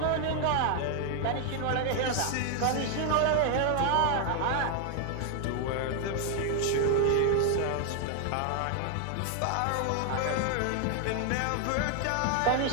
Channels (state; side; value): different; both; correlation 0.00